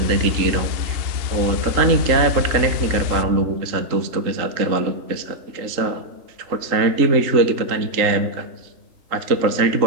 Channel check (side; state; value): left; late; 3.8 ms